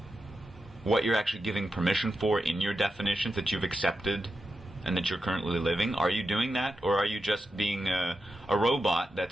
what you're actually giving permission for in your definitions that you've accepted and that you're currently living? Are you doing that? Or are you just being a robot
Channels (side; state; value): both; normal; correlation 0.89